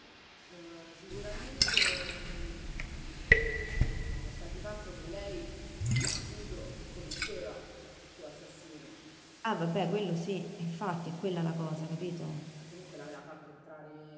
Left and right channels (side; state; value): both; identical; correlation 1.00